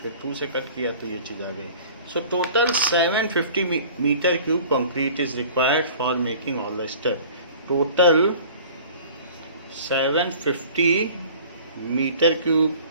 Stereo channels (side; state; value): both; inverted; correlation -0.46